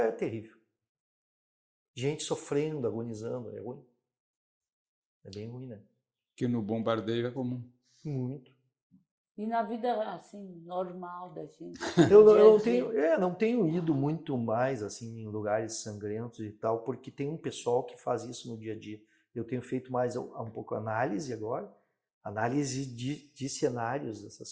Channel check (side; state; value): both; identical; correlation 1.00